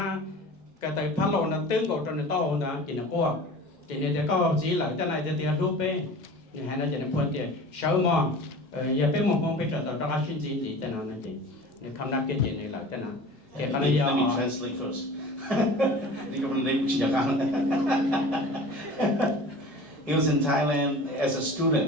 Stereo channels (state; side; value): normal; both; correlation 0.39